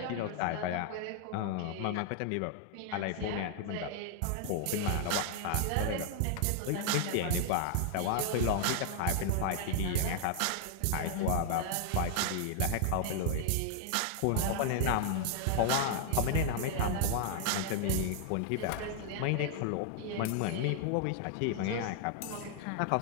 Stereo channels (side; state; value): both; different; correlation 0.00